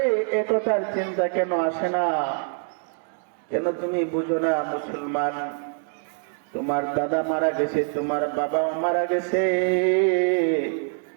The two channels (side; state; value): left; silent; 62 dB below the other